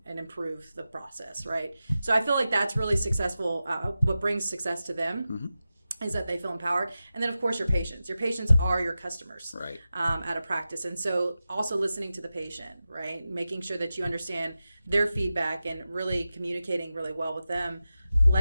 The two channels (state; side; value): inverted; both; correlation -0.93